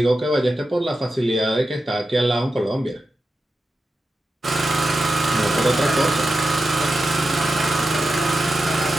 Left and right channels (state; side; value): normal; both; correlation 0.91